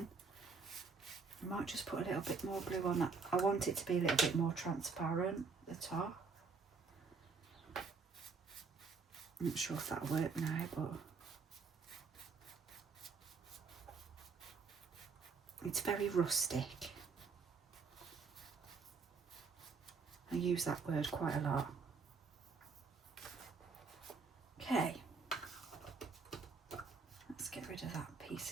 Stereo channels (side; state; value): left; quieter; 4.9 dB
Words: I might just put a little bit more blue on that. I want it to be a little bit more transparent at the top. I'm not sure if that'll work now, but it's very rustic. I use that word quite a lot. Okay, let's get rid of that piece